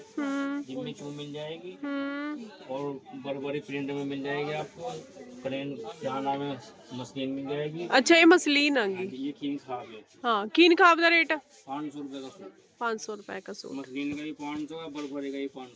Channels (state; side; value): identical; both; correlation 1.00